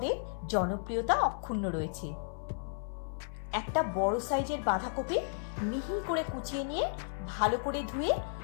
জনপ্রিয়তা অক্ষুণ্ণ রয়েছে। একটা বড় সাইজের বাঁধাকপি মিহি করে কুচিয়ে নিয়ে ভালো করে ধুয়ে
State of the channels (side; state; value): right; silent; 55 dB below the other